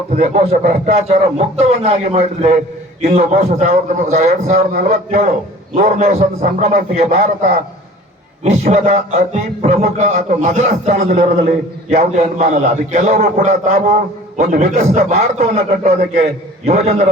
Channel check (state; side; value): normal; both; correlation 0.46